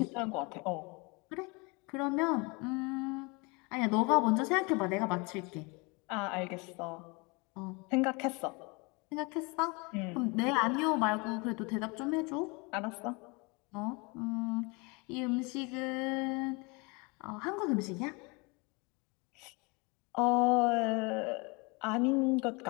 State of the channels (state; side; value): quieter; right; 28.7 dB